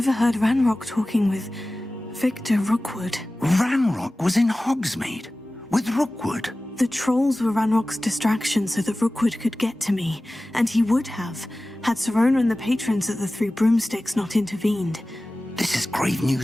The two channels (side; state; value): both; normal; correlation 0.97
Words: Ranrock talking with Victor Rookwood. Ranrock was in Hogsmeade with Rookwood. The trolls were Ranrock's distraction so that Rookwood could get to me, and he would have, had Serona and the patrons at the Three Broomsticks not intervened. This is grave